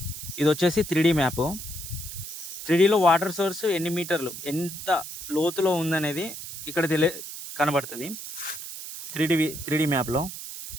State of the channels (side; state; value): right; noise; hiss, 9 dB below the sound